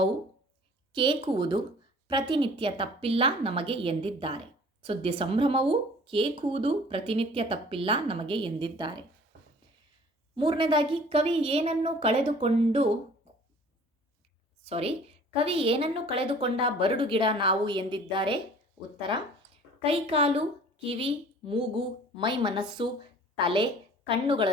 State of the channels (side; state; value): both; normal; correlation 0.49